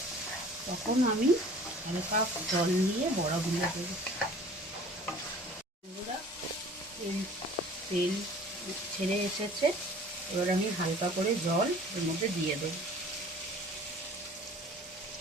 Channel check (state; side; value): normal; both; correlation 0.48